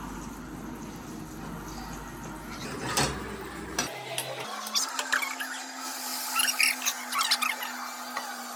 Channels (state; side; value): identical; both; correlation 1.00